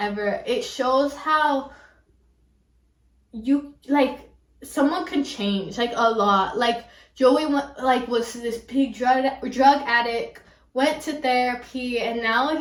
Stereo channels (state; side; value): identical; both; correlation 1.00